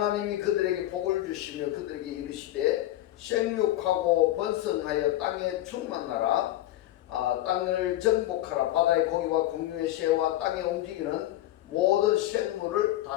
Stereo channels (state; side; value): quieter; right; 14.6 dB